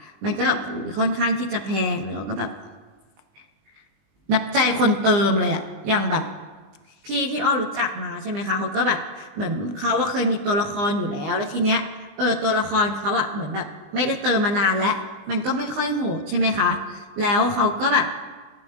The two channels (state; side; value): late; left; 20 ms